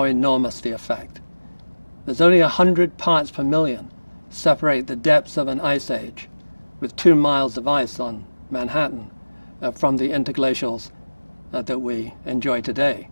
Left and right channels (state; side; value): inverted; both; correlation -1.00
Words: enormous the effect. There's only 100 parts per million separate the depths of an ice age with 2 miles of ice on Manhattan from the interglacials that we enjoy today.